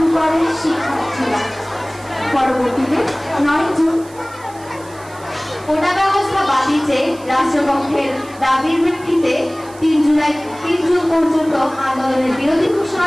করে শিক্ষার্থীরা। পরবর্তীতে 9 জুন কোটা ব্যবস্থা বাতিল চেয়ে রাষ্ট্রপক্ষের দাবির ভিত্তিতে 3 জুন পর্যন্ত আন্দোলনের বিরোধী ঘোষণা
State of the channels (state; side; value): noise; right; hiss, 22 dB below the sound